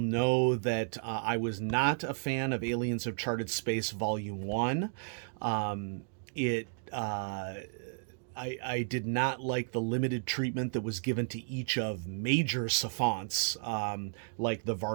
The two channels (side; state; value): left; silent; digital silence